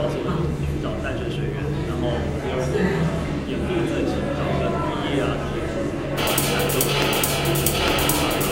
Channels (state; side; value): identical; both; correlation 1.00